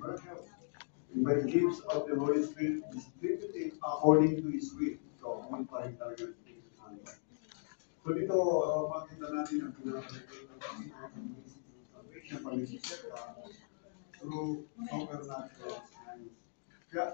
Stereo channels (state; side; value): silent; right; digital silence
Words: and by gifts of the Holy Spirit distributed according to His will. So, yun pa rin talaga. So dito, makita natin ang pinaka-relate ng salvation, pag-isip ka, through supernatural signs.